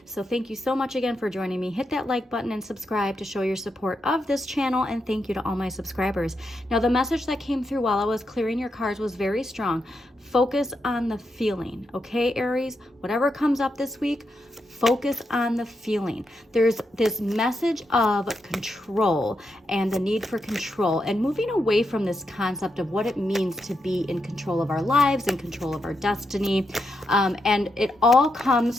So thank you so much again for joining me. Hit that like button and subscribe to show your support of this channel, and thank you to all my subscribers. Now, the message that came through while I was clearing your cards was very strong. Focus on the feeling, okay, Aries? Whatever comes up this week, focus on the feeling. There's this message of control and the need for control and moving away from this concept of what it means to be in control of our lives, in control of our destiny. And it all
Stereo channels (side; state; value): both; normal; correlation 0.84